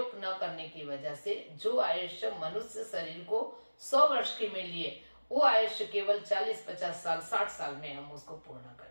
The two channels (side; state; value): both; inverted; correlation -1.00